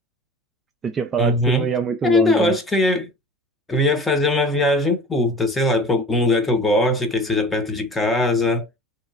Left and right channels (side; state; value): both; normal; correlation 0.41